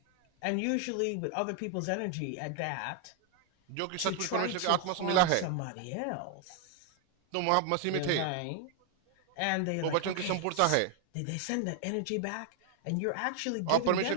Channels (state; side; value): different; both; correlation 0.00